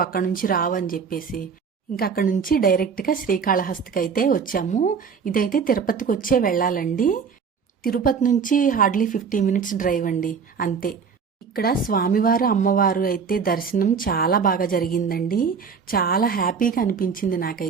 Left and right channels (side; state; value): left; quieter; 6.0 dB